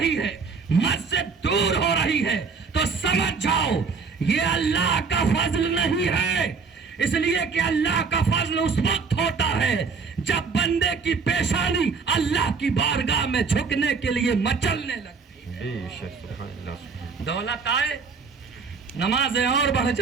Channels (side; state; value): left; quieter; 5.1 dB